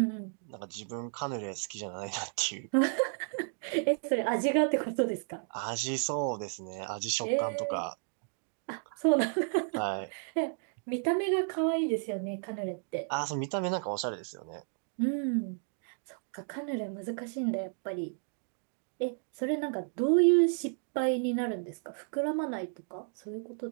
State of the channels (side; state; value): left; silent; 56 dB below the other